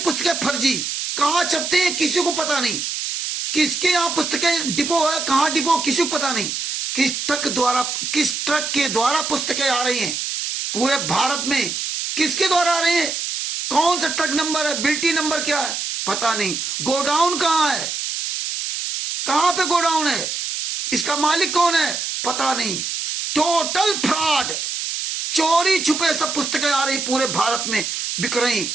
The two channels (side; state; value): right; noise; hiss, 3 dB below the sound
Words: फर्जी। कहां छपते हैं किसी को पता नहीं, किसके यहाँ पुस्तकें डिपो है, कहां डिपो किसी को पता नहीं। किस ट्रक के द्वारा पुस्तकें आ रही हैं पूरे भारत में, किसके द्वारा आ रही हैं, कौन सा ट्रक नंबर है, बिल्टी नंबर क्या है, पता नहीं। गोडाउन कहां है, कहां पे गोडाउन है, इसका मालिक कौन है, पता नहीं। टोटल फ्रॉड, चोरी छुपे सब पुस्तकें आ रही पूरे भारत में बिक रही।